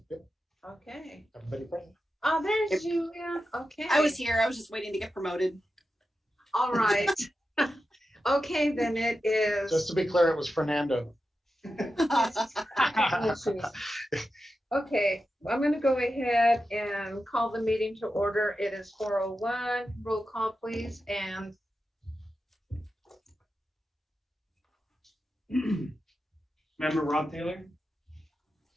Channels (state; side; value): normal; both; correlation 0.91